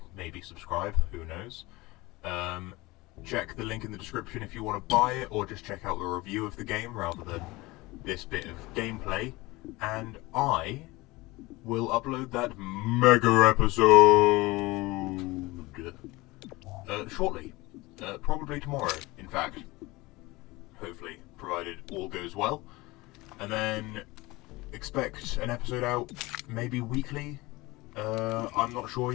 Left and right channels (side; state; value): right; quieter; 21.6 dB